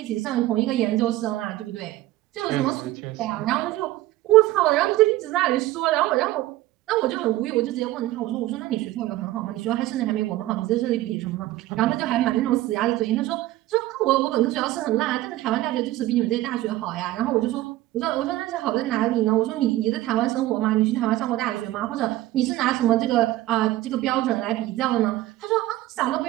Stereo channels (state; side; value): quieter; left; 16.2 dB